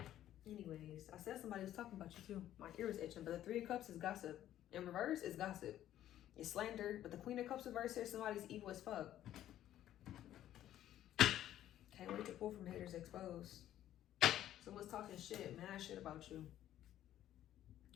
Anyways, I said somebody was talking about you too. My ear is itching, but the Three of Cups is gossip. In reverse is gossip. It's slander. But the Queen of Cups reverse here, somebody's evil as fuck. Can't wait to pull from haters exposed. Someone's talking shit, mad shit about you.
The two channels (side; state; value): right; quieter; 12.3 dB